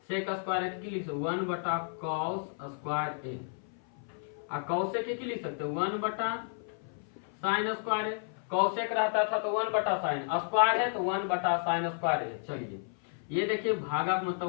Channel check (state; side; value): silent; right; 56 dB below the other